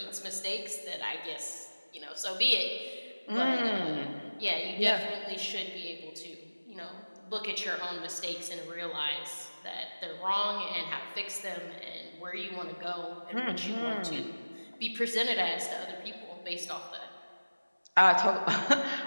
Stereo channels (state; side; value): inverted; both; correlation -1.00